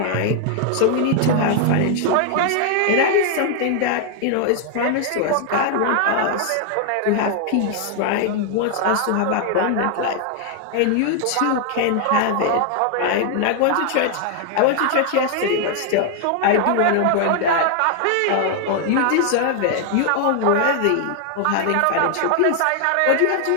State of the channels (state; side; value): different; both; correlation 0.00